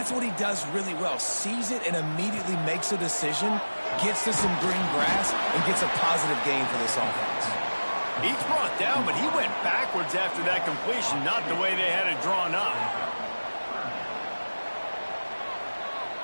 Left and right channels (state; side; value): inverted; both; correlation -1.00